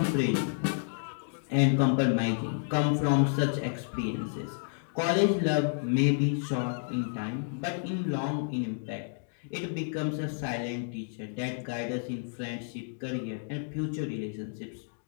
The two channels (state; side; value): silent; right; digital silence